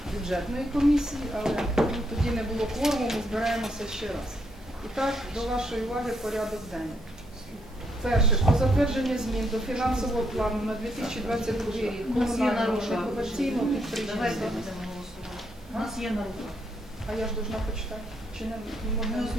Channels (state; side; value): normal; both; correlation 0.76